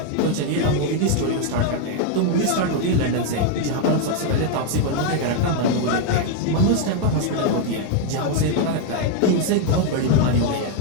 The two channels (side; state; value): both; different; correlation 0.00